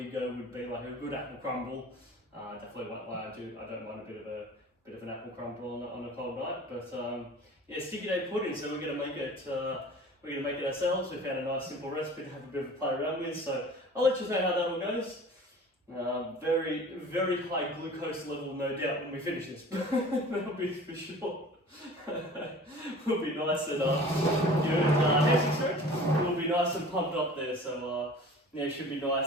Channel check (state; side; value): normal; both; correlation 0.43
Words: go would be like a good apple crumble. Definitely won't lie, I don't mind a bit of an apple crumble on a cold night. But sticky date pudding. So we're gonna make it. We're going to make it ourselves. We found a nice simple recipe to have a bit of a play around with, so I'll let you know how that all goes. Very, very high glucose level, no doubt, when we finish this. That'll be for sure. We'll be nice and we'll be nice and pumped up there, so it should be